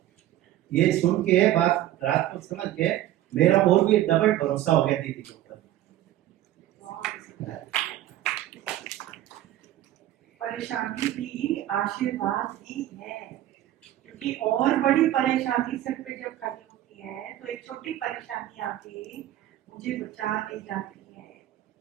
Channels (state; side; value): quieter; left; 13.7 dB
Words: ये सुन के बात रात को समझ के मेरा और भी डबल भरोसा हो गया दीदी के ऊपर। परेशानी भी आशीर्वाद ही है, क्योंकि और बड़ी परेशानी सिर पे जब खड़ी होती है तो एक छोटी परेशानी आके मुझे बचा ले जाती है।